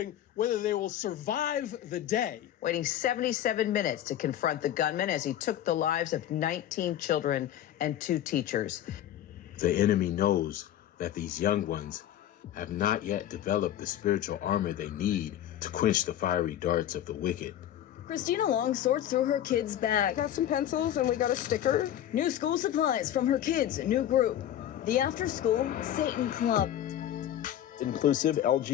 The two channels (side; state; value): right; quieter; 11.6 dB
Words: whether they will survive the day. Waiting 77 minutes to confront the gunman as he took the lives of 19 children and 2 teachers. The enemy knows that these young ones have not yet developed the spiritual armor they need to quench the fiery darts of the wicked. Christina Long sorts through her kids' bag. Got some pencils and we got a sticker. New school supplies from her kids' new group, the After School Satan Club. Inclusive